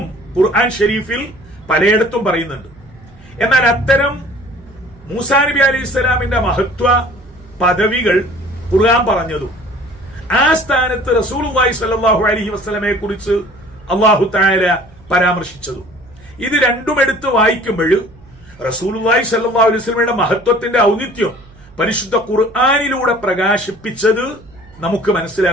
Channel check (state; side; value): noise; right; hum, 24 dB below the sound